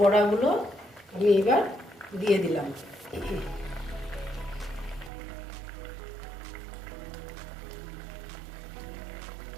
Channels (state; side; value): drops out; left; at 5.1 s